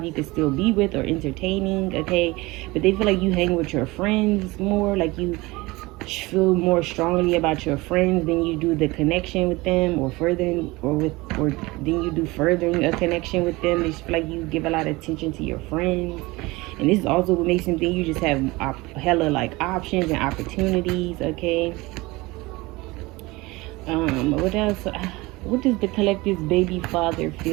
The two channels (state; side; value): quieter; left; 22.0 dB